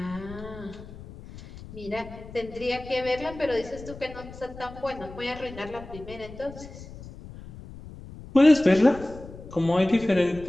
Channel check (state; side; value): noise; left; rumble, 15 dB below the sound